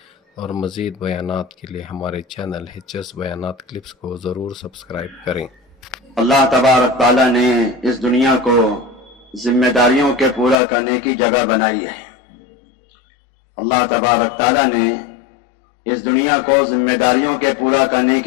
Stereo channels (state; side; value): drops out; right; at 10.6 s